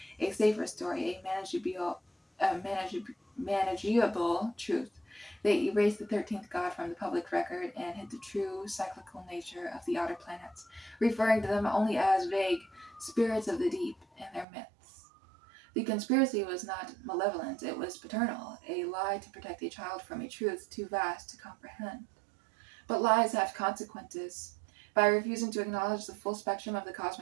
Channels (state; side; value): drops out; left; at 14.5 s